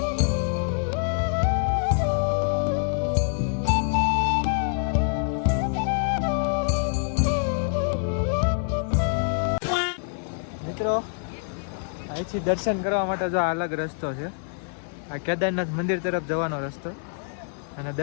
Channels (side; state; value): right; silent; digital silence